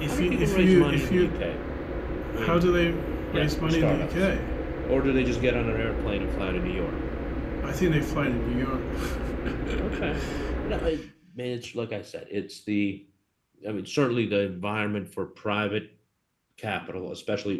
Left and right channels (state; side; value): identical; both; correlation 1.00